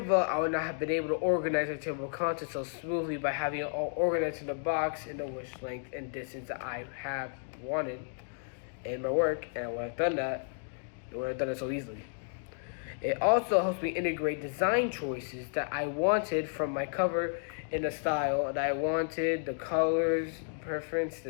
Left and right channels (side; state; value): right; silent; digital silence